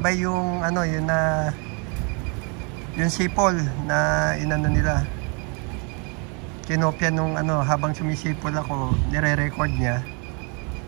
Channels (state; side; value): quieter; left; 34.4 dB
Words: yung ano, yun na yung sipol na inano nila. Kinopya nung ano, habang sumisipol ako, nire-record niya.